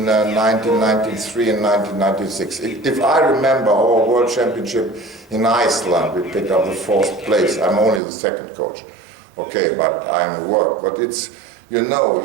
1993 and 1996. If I remember our World Championship in Iceland, we picked up the 4th place. I'm only the 2nd coach. Okay, but I'm at work. But it's, you know,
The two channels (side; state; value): left; drops out; at 8.0 s